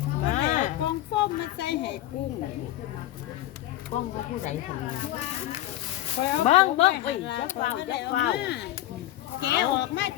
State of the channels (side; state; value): right; quieter; 14.4 dB